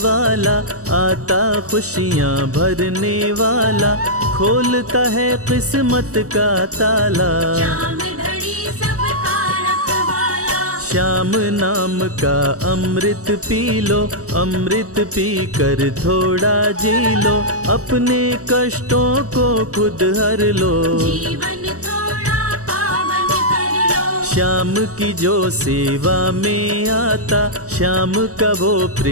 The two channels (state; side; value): late; left; 0.66 ms